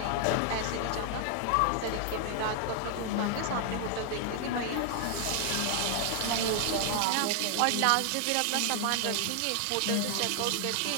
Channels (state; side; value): different; both; correlation 0.00